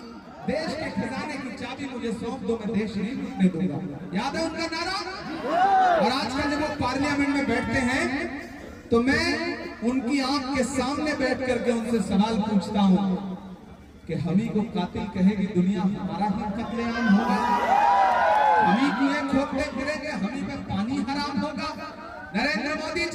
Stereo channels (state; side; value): identical; both; correlation 1.00